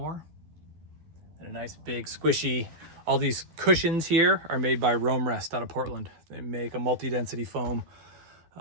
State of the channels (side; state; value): left; late; 12 ms